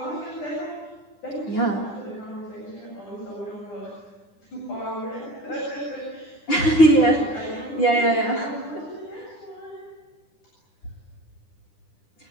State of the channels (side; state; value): right; late; 9.9 ms